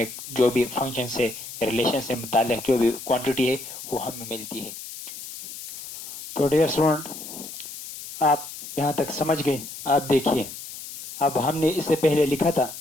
जो भी फंक्शन से रिलेशन से मुताल्लिक जो भी क्वांटिटी है वो हमें मिलती है। तो डियर स्टूडेंट, आप यहाँ तक समझ गए? आप देखिए, अब हमने इससे पहले लिखा था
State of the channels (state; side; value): noise; left; hiss, 11 dB below the sound